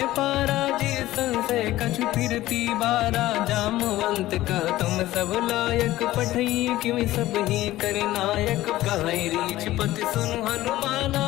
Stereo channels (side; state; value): right; quieter; 15.8 dB